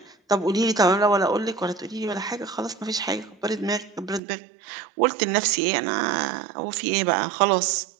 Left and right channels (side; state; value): left; drops out; at 4.2 s